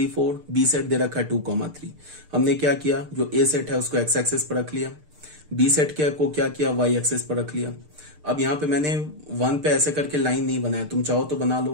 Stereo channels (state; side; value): late; left; 6.6 ms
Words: 4, बी सेट दे रखा है 2 3। हमने क्या किया, जो ए सेट है उसको एक्स एक्सिस पर रख लिया, बी सेट को क्या किया, वाई एक्सिस पर रख लिया। अब यहाँ पे मैंने 1 पे ऐसे करके लाइन नहीं बनाया, तुम चाहो तो बना